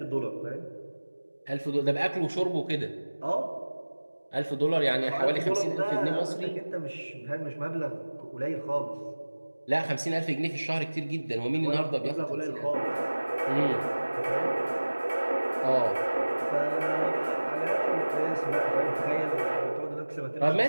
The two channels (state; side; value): inverted; both; correlation -1.00